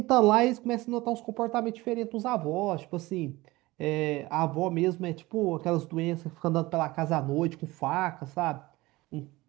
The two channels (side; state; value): left; quieter; 20.2 dB